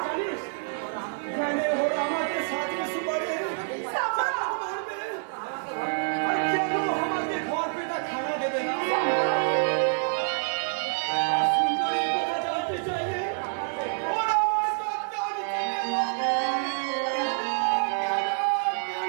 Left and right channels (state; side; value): silent; left; 60 dB below the other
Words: जानिस मैंने हो हमारे साथ में सुबह সাম্বা, मार दे, और क्या लो हमारे घर पे ना खाना दे देना। সাম্বা। सुंदरी को बचाते चाहिए और हमारे साथ जाने